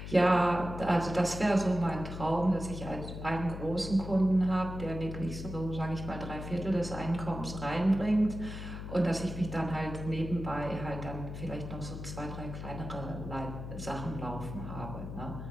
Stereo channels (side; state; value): left; noise; hum, 8 dB below the sound